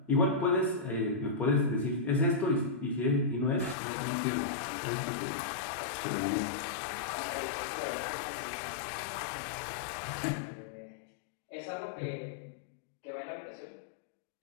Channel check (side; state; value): right; drops out; at 3.8 s